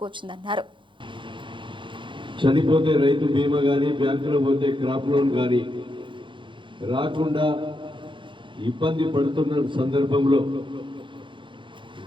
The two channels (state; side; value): late; left; 0.24 ms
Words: చనిపోతే రైతు బీమా గాని, బ్యాంకులో పోతే క్రాప్ లోన్ గాని రాకుండా ఇబ్బంది పడుతున్న సందర్భంలో